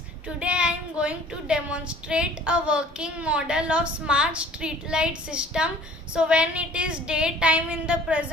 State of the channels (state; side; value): normal; both; correlation 0.51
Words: today I am going to demonstrate a working model of smart street light system. So when it is daytime in the